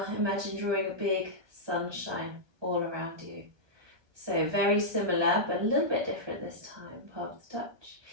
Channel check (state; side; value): late; left; 1.2 ms